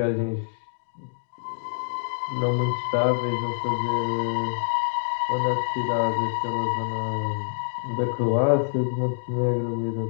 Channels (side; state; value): right; silent; digital silence